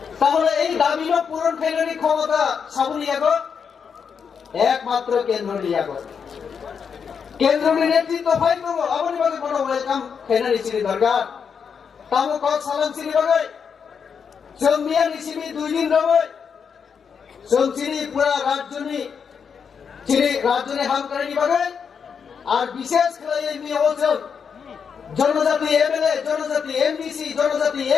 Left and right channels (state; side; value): quieter; right; 6.6 dB